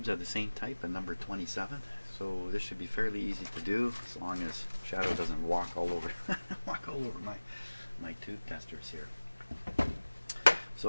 are the same type, and number 27. So this should be fairly easy to do, as long as Shadow doesn't walk all over my tube testers here.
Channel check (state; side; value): inverted; both; correlation -1.00